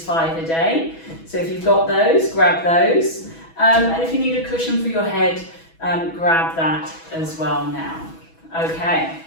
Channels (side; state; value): right; late; 6.1 ms